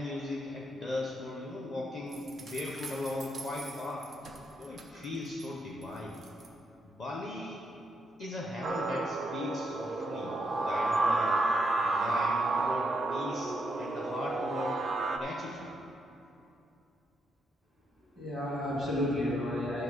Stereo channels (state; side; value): normal; both; correlation 0.79